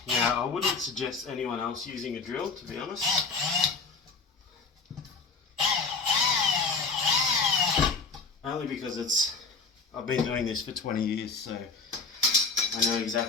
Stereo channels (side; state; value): right; quieter; 4.5 dB